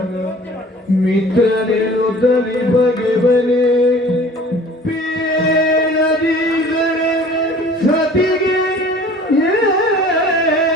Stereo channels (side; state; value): both; normal; correlation 0.48